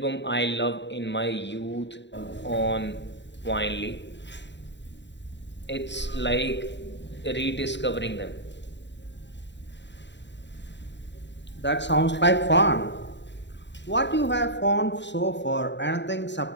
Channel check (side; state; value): right; late; 0.52 ms